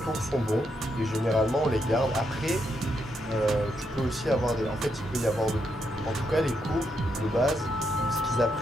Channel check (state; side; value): normal; both; correlation 0.80